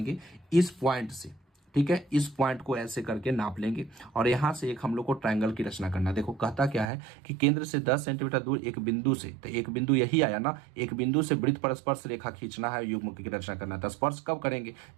इस पॉइंट से, ठीक है, इस पॉइंट को ऐसे करके नाप लेंगे, और यहां से एक हम लोग को ट्रायंगल की रचना करना। देखो कहता क्या है कि केंद्र से 10 सेंटीमीटर दूर एक बिंदु से, तो एक बिंदु यही आया ना, एक बिंदु से वृत्त पर स्पर्श रेखा खींचना है, युग्म की रचना करना है। तो स्पर्श कब करेंगे,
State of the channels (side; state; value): left; drops out; at 6.9 s